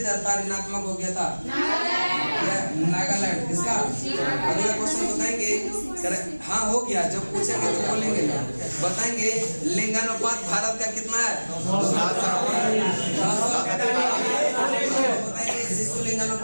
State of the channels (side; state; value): both; inverted; correlation -1.00